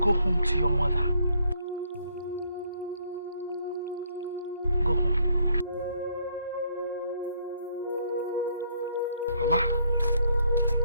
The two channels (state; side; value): inverted; both; correlation -0.68